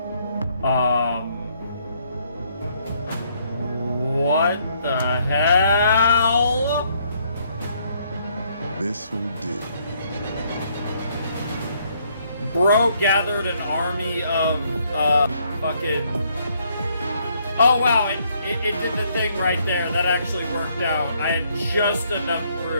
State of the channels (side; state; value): both; inverted; correlation -0.69